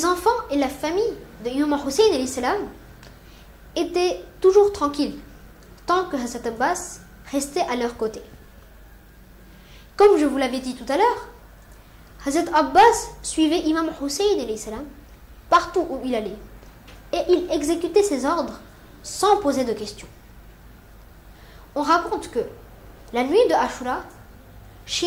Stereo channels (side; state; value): both; identical; correlation 1.00